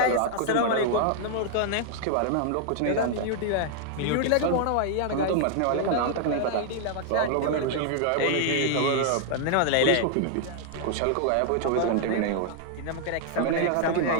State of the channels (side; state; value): both; different; correlation 0.00